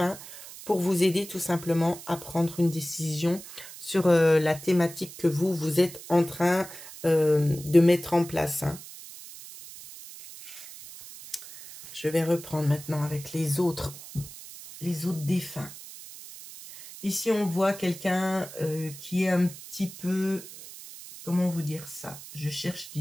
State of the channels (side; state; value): right; noise; hiss, 15 dB below the sound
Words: pour vous aider tout simplement à prendre une décision sur la thématique que vous êtes en train de mettre en place. Hein. Je vais reprendre maintenant avec les autres défunts. Ici, on voit quelqu'un qui est un petit peu... Comment vous dire ça? Je cherche